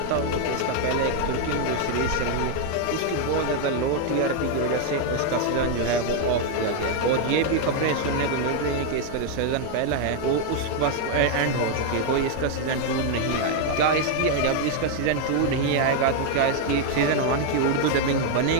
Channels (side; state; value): both; different; correlation 0.00